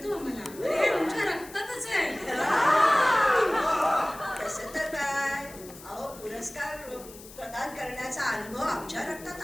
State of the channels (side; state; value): left; noise; hiss, 18 dB below the sound